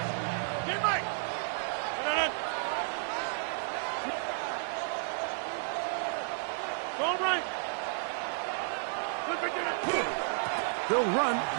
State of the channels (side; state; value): left; silent; 56 dB below the other